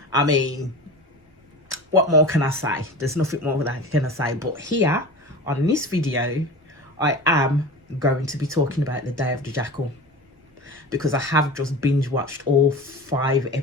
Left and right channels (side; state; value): both; normal; correlation 0.33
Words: I mean, what more can I say? There's nothing more that I can say, but here on this video I am going to be talking about the Day of the Jackal, because I have just binge watched all 5